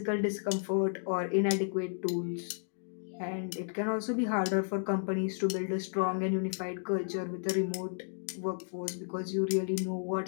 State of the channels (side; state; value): right; silent; digital silence